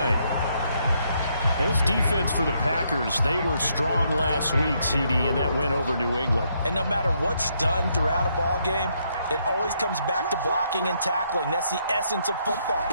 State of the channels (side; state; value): both; inverted; correlation -0.74